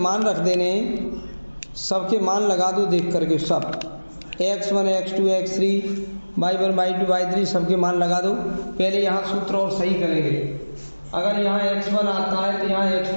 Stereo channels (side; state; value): both; inverted; correlation -1.00